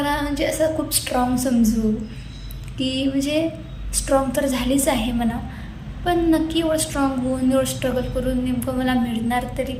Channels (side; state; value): both; identical; correlation 1.00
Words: म्हणजे असं खूप स्ट्रॉंग समजू की म्हणजे स्ट्रॉंग तर झालीच आहे म्हणा, पण नक्की एवढं स्ट्रॉंग होऊन एवढं स्ट्रगल करून नेमकं मला मिळणार तरी